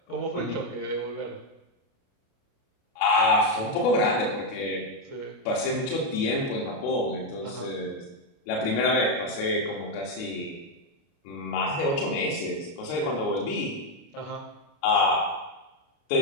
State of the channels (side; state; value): right; late; 29 ms